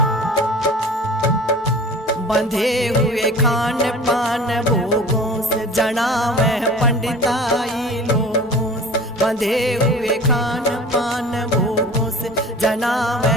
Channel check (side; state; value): both; normal; correlation 0.41